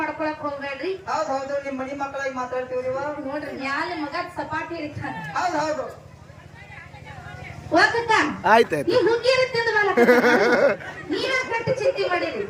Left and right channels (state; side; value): identical; both; correlation 1.00